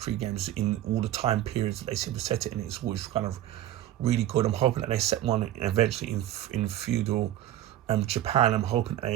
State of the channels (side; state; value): left; quieter; 12.9 dB